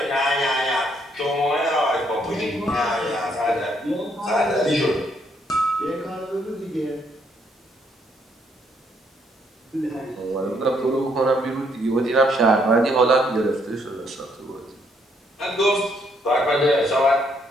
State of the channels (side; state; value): both; normal; correlation 0.71